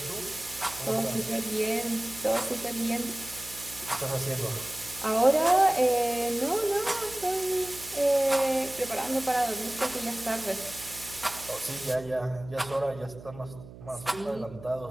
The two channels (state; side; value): noise; right; hum, 17 dB below the sound